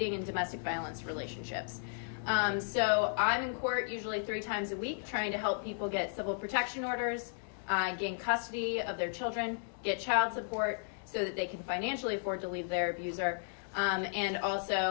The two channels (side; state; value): right; silent; digital silence